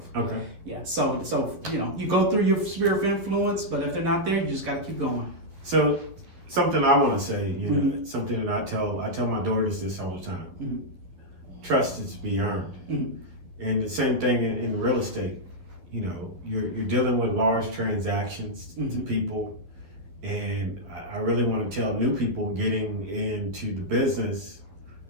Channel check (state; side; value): late; left; 11 ms